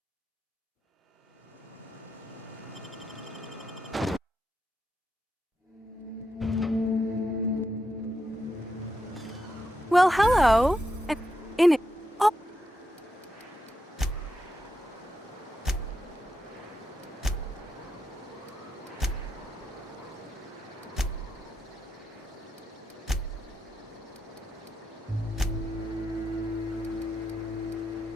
Well, hello. And in it. Oh.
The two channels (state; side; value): normal; both; correlation 0.85